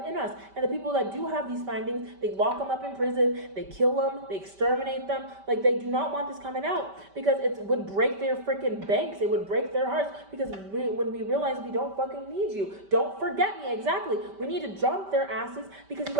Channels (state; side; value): late; left; 5.1 ms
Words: us. And the people that do have these findings, they lock them up in prison, they kill them, they exterminate them. Like, they do not want this coming out, because it would break their freaking banks. It would break their hearts, because when we realize we don't fucking need you. Don't forget me, exactly. We need to jump their asses, because you